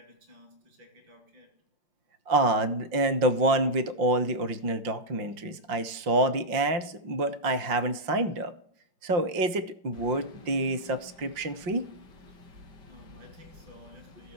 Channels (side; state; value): left; late; 5.6 ms